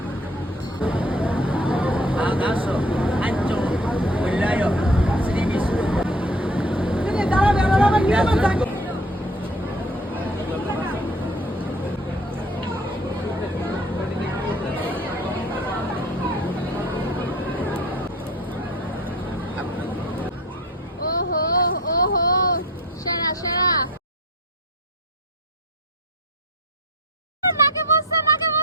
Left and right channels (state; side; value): normal; both; correlation 0.45